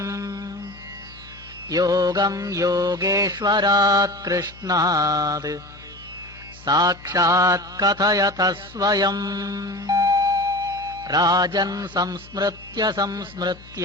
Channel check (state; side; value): noise; left; hum, 21 dB below the sound